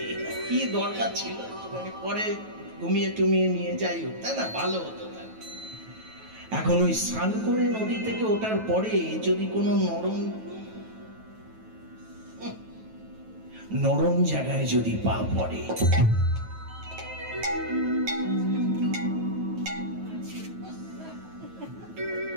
কি দরকার ছিল, পরে ঘুমিয়ে টুমিয়ে নিয়ে যাই হোক, তাই না, ভালো হতো। এখন ওই স্নান করে নদী থেকে ওঠার পরে যদি কোনো নরম জায়গায় যদি পা পড়ে,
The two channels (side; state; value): left; late; 9.2 ms